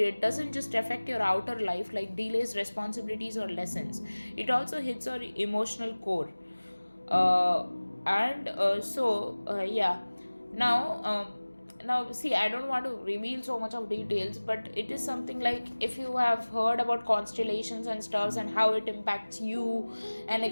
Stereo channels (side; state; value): both; inverted; correlation -1.00